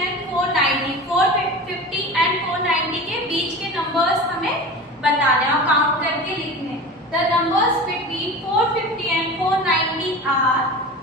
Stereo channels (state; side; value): normal; both; correlation 0.32